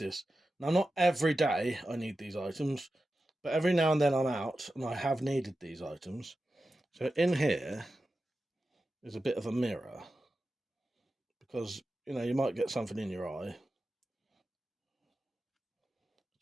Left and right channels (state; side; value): normal; both; correlation 0.92